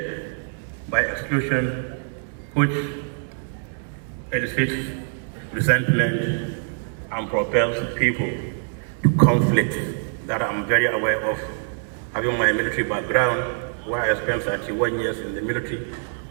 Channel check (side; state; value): left; silent; digital silence